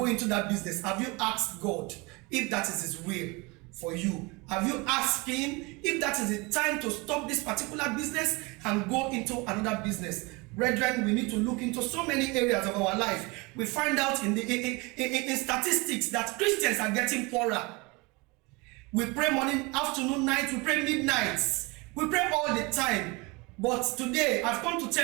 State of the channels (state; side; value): quieter; left; 26.4 dB